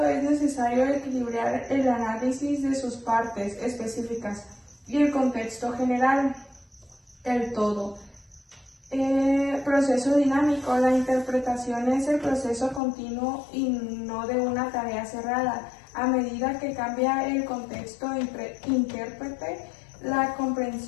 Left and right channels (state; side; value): drops out; right; at 12.8 s